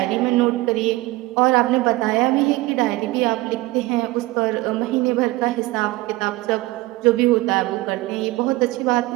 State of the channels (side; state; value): left; quieter; 20.0 dB